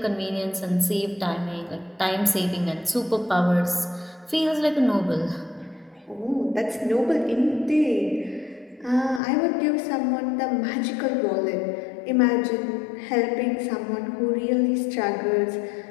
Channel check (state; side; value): drops out; right; at 9.2 s